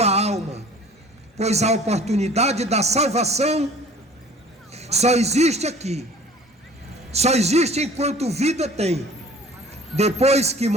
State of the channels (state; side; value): normal; both; correlation 0.48